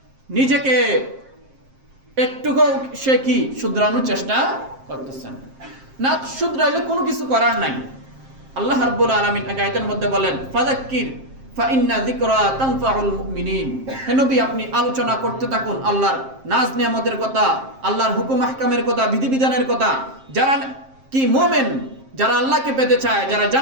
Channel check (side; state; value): left; late; 7.5 ms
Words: নিজেকে একটুকু সে কি শুধরানোর চেষ্টা করতেছেন না। শুধরাইলে কোনো কিছু করার নাই। আল্লাহ রাব্বুল আলামিন আয়াতের মধ্যে বলেন, ফাযাক্কির ফাইন্না যিকরা তানফাউল মুমিনিন। হে নবী, আপনি আলোচনা করতে থাকুন আল্লাহর নাজ নিয়ামতের কথা, আল্লাহর হুকুম আহকামের কথা, বিধিবিধানের কথা। যারা কি মুমিন, যারা আল্লাহকে পেতে চায়, যারা